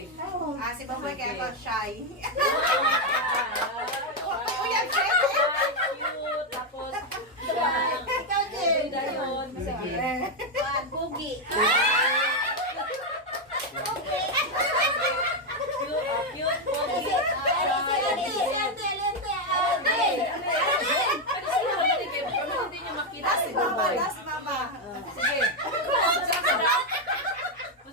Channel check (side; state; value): both; normal; correlation 0.03